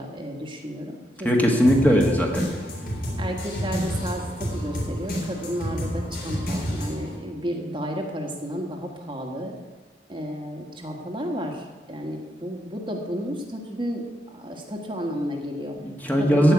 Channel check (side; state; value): both; normal; correlation 0.81